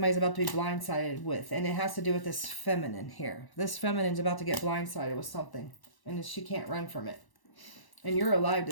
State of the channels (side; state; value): right; late; 1.1 ms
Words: about to be blindsided with. And it has to do with this feminine here. This feminine's about to get blindsided with something. And she can't run from it. And you're alive